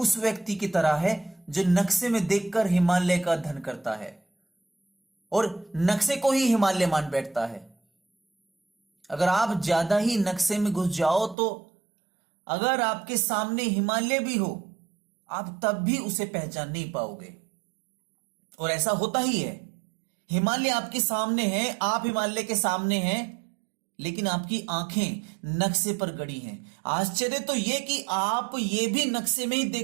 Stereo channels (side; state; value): left; drops out; at 11.4 s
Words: व्यक्ति की तरह है जो नक्शे में देखकर हिमालय का अध्ययन करता है और नक्शे को ही हिमालय मान बैठता है। अगर आप ज्यादा ही नक्शे में घुस जाओ तो अगर आपके सामने हिमालय भी हो, आप तब भी उसे पहचान नहीं पाओगे। और ऐसा होता ही है, हिमालय आपके सामने है, आप हिमालय के सामने हैं, लेकिन आपकी आंखें नक्शे पर गड़ी हैं। आश्चर्य तो यह कि आप ये भी नक्शे में ही